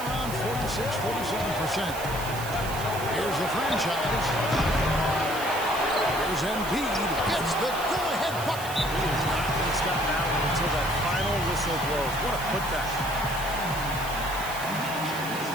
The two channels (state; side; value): noise; right; hiss, 11 dB below the sound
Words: around 46-47%. Here's the franchise. Here's Embiid. Gets the go-ahead bucket. He is not going to stop now until that final whistle blows. What a putback.